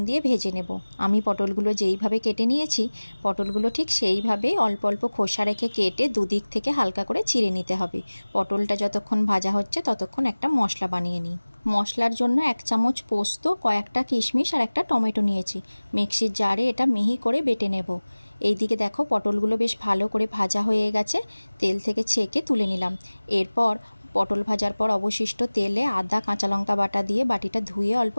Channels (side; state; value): both; inverted; correlation -1.00